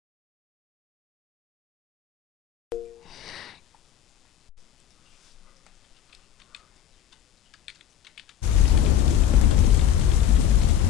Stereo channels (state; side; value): quieter; right; 10.3 dB